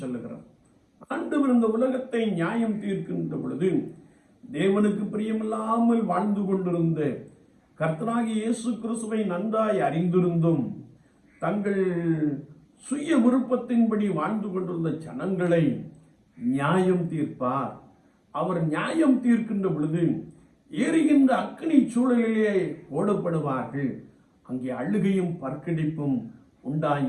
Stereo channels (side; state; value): both; identical; correlation 1.00